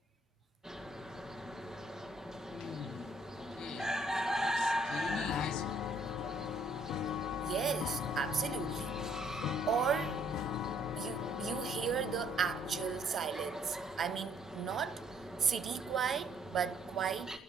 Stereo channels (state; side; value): normal; both; correlation 0.66